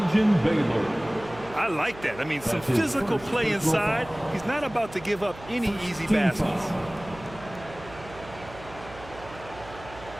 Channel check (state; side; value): noise; right; hum, 17 dB below the sound